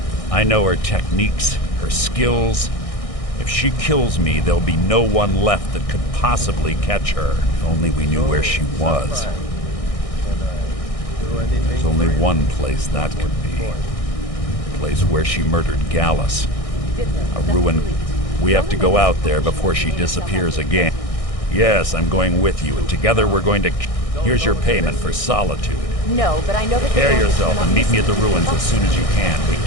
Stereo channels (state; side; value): late; right; 1.6 ms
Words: I know her techniques, her skills. If she kills me, there'll be no one left that could possibly catch her. If only we knew where she was. There's only one place that could be. The place where she murdered Gallus. A ruin. We have to go out there before she disappears again. Yes, I'm going with you, and together we're going to... Here's your payment for solitude. No, but I know that... Prepare yourself and meet me at the ruins as soon as you can. We